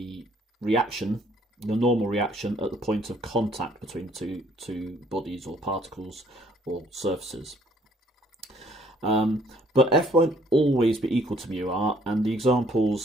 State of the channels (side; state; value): both; normal; correlation 0.62